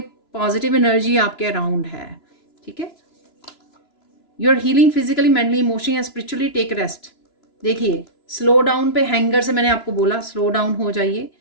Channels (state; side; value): late; right; 2.9 ms